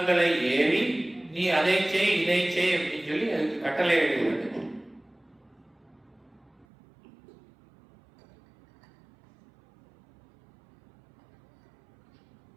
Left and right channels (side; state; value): left; drops out; at 6.7 s